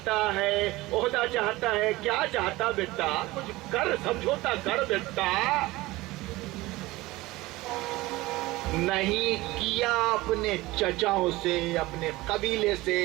ہے، عہدہ چاہتا ہے، کیا چاہتا بیٹا؟ کچھ کر، سمجھوتا کر بیٹا۔ نہیں کیا اپنے چچاؤں سے، اپنے قبیلے سے،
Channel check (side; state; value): left; quieter; 19.6 dB